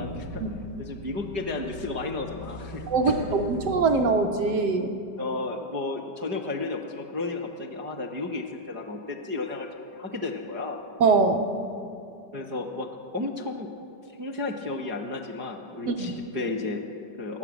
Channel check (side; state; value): left; late; 5.1 ms